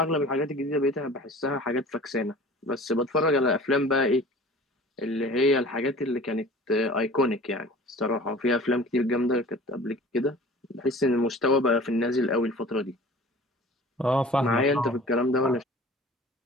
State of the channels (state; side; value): normal; both; correlation 0.43